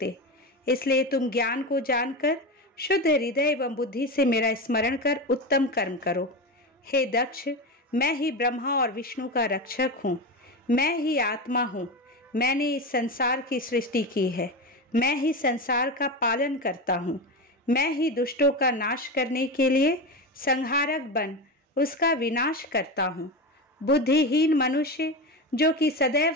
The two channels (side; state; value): both; normal; correlation 0.20